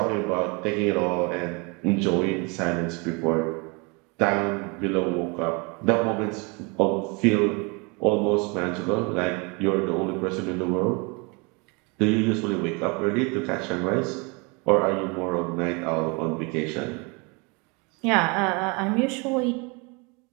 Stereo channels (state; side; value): quieter; left; 30.1 dB